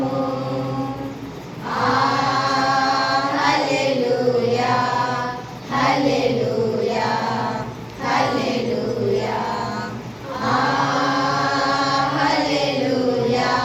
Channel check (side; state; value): both; identical; correlation 1.00